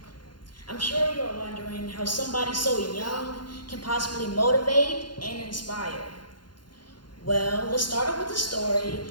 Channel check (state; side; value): late; right; 0.71 ms